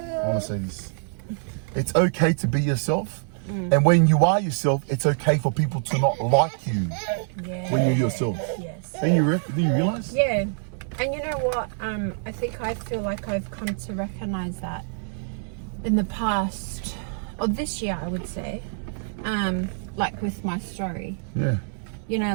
want to say this. It's okay to be yourself. And when you are yourself, it's okay for people to not like you when you're yourself. Yes. Do you realize? Yeah. And you know what? I feel like I've come to recognize that in the past, or this year, I would say, like with my story. Yeah. You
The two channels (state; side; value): silent; left; 61 dB below the other